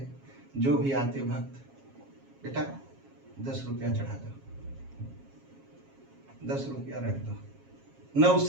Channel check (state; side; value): late; left; 7.4 ms